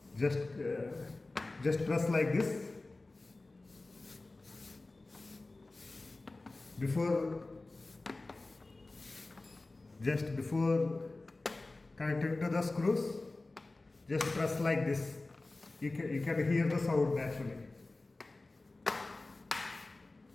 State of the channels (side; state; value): right; quieter; 3.1 dB